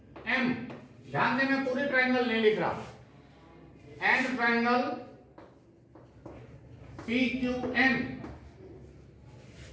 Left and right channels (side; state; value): both; identical; correlation 1.00